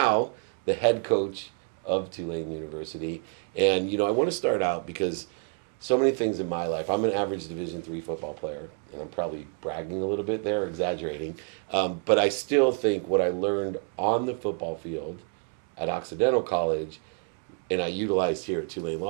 the head coach of Tulane University. And I want to start out because so many things in my life. I'm an average Division III football player, and I'm probably bragging a little bit there, exaggerating. But I still think what I learned on the football field at Occidental College, and I utilized here at Tulane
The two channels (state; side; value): quieter; left; 37.7 dB